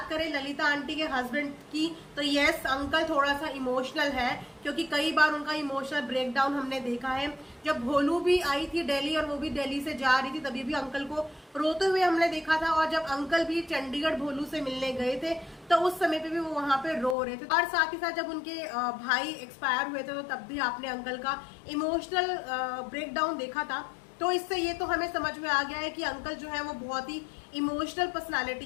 करें ललिता आंटी के हस्बैंड की तो यस, अंकल थोड़ा सा इमोशनल है, क्योंकि कई बार उनका इमोशनल ब्रेकडाउन हमने देखा है। जब भोलू भी आई थी दिल्ली और वो भी दिल्ली से जा रही थी, तभी भी अंकल को रोते हुए हमने देखा था। और जब अंकल भी चंडीगढ़ भोलू से मिलने गए थे तो उस समय पे भी वो वहां पे रो रहे थे। और साथ ही साथ जब उनके भाई एक्सपायर हुए थे तो तब भी आपने अंकल का इमोशनल ब्रेकडाउन देखा था। तो इससे ये तो हमें समझ में आ गया है कि अंकल जो है वो बहुत ही इमोशनल पर्सनालिटी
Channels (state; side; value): drops out; right; at 17.2 s